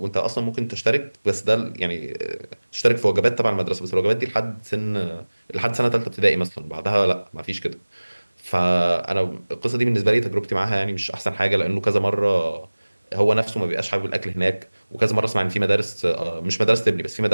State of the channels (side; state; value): both; inverted; correlation -1.00